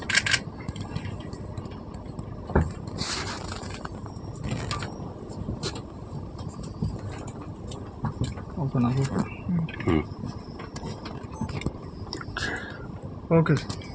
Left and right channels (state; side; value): identical; both; correlation 1.00